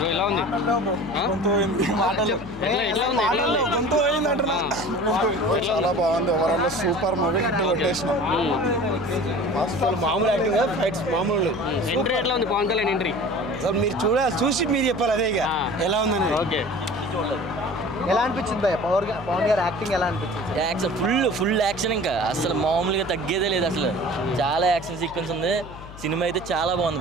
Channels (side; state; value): left; noise; hum, 15 dB below the sound